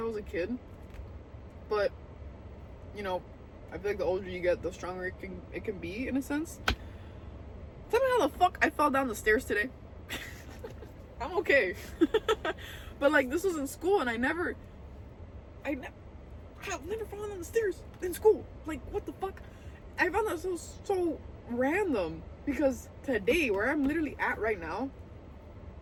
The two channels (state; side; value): identical; both; correlation 1.00